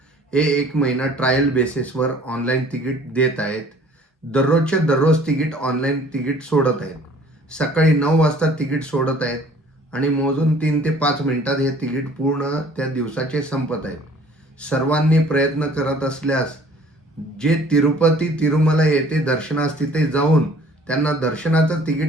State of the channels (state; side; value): normal; both; correlation 0.54